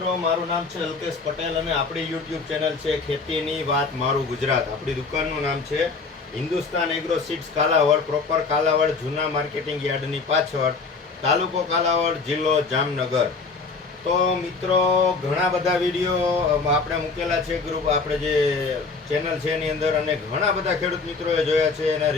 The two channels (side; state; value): right; quieter; 4.3 dB